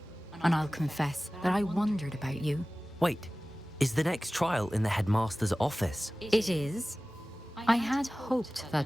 And I'll confess that I wondered about you. Wait, is the next trial in the headmaster's office? It is. I had hoped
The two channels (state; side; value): normal; both; correlation 0.97